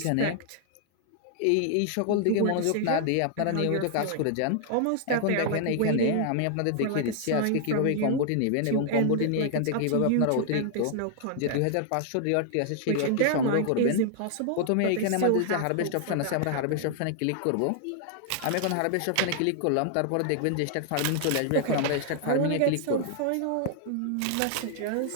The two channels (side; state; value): both; different; correlation 0.00